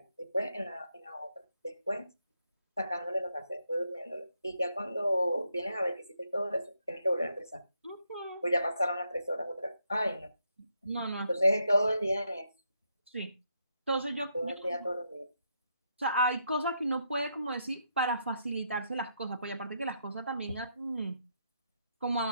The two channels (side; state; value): both; inverted; correlation -0.78